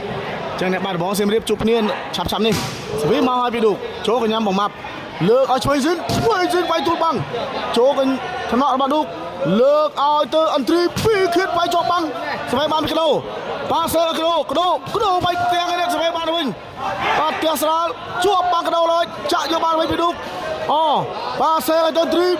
្ចឹងអ្នកបាត់ដំបងសៀមរាបជួបគ្នាឆាប់នេះសវីមកឲ្យពីឌូចូលកញ្ញាំបងម៉ាប់លើកឲ្យឆ្វេងស៊ីនវាយទូលបាំងចូលកថ្នាក់របស់ឌូលើកឲ្យទៅអន្ត្រី2ខៀតវាយជាប់បាំងសវីបានពីកដោប៉ាសើកដោវាយទាំងនេះសវីបានវិញបាទផ្ទះស្រាលជាប់បាំងកដោលើចាក់យកបានវិញពីឌូអូប៉ាសើឲ្យទៅអន្ត្រី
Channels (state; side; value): identical; both; correlation 1.00